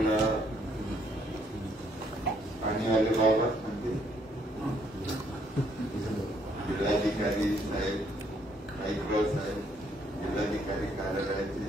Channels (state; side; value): normal; both; correlation 0.69